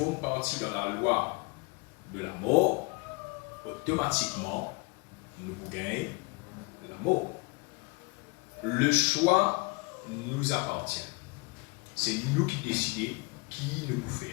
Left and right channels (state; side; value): quieter; right; 28.3 dB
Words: partie de la loi de la mort, automatiquement, nous pouvons gagner la mort. Le choix nous appartient. C'est nous qui décidons qui nous pouvons